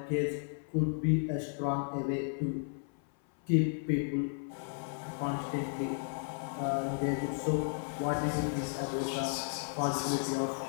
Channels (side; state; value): right; silent; 55 dB below the other